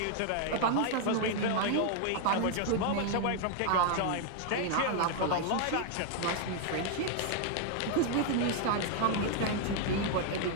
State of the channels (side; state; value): both; different; correlation 0.00